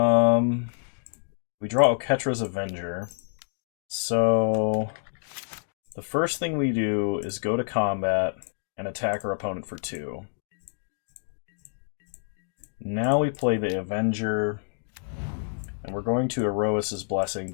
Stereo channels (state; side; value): silent; right; digital silence